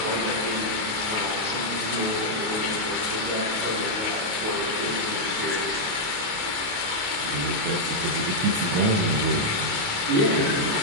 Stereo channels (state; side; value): late; left; 28 ms